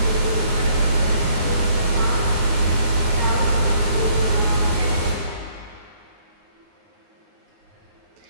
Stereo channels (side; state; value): left; late; 9.6 ms